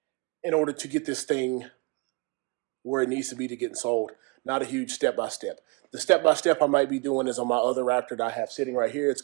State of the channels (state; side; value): quieter; left; 28.1 dB